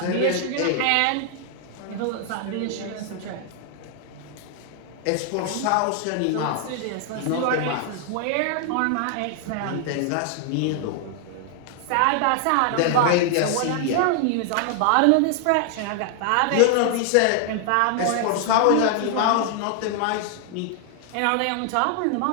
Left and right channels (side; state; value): both; different; correlation 0.00